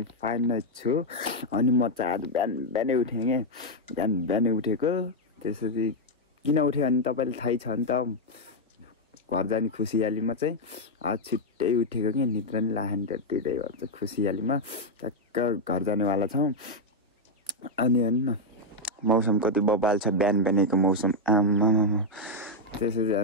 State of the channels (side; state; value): both; normal; correlation 0.00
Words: फाइन नै छु। अनि म चाहिँ आज बिहानै उठेँ कि बिहानै उठेको। त्यसरी किन उठेँ भने तपाईँले थाहै छ नि त, घर जाने खुसियालीमा चाहिँ आज छिट्टै उठेको कि निद्रा नि लागेन त्यतिकै भन्छ खुसियालीमा टक्क घर जानेवाला छौँ। अनि हेर्नु न मौसम कति बबाल छ, बिहानैको मौसम आमा त्यसरी